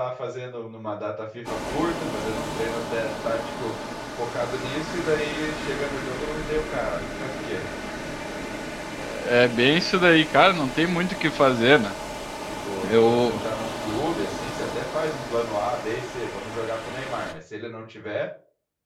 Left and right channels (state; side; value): identical; both; correlation 1.00